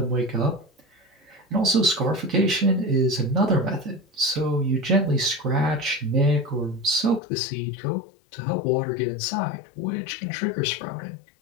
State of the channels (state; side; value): drops out; right; at 7.2 s